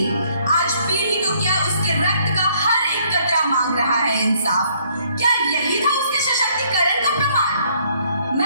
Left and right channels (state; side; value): inverted; both; correlation -0.65